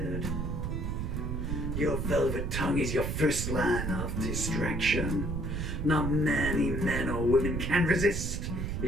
Your velvet tongue is your first line of distraction. Not many men or women can resist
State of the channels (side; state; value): right; noise; rumble, 2 dB below the sound